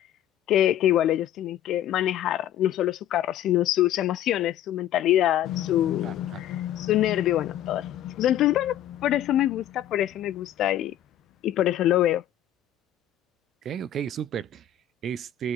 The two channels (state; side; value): quieter; right; 10.9 dB